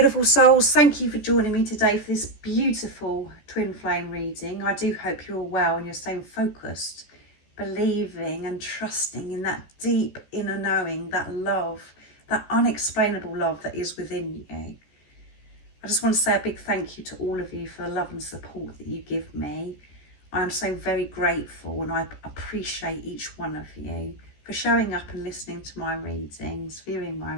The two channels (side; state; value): right; late; 14 ms